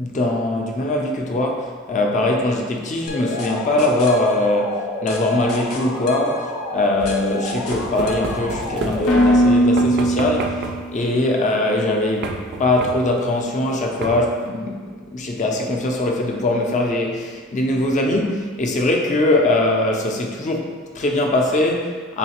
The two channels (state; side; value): normal; both; correlation 0.42